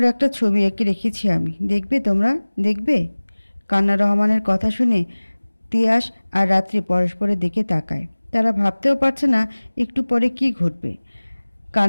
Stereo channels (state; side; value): inverted; both; correlation -1.00